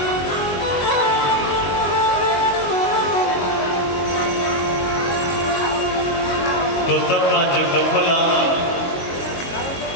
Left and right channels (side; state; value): right; late; 22 ms